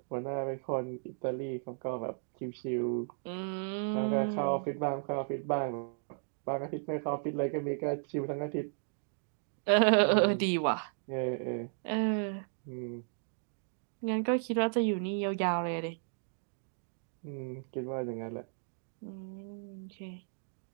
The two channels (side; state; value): left; silent; digital silence